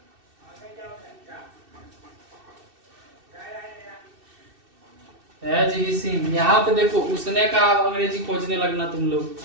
हैज ही सीन। यहाँ पे देखो उसने का अंग्रेजी खोजने लगना तुम लोग।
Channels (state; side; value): late; left; 2.6 ms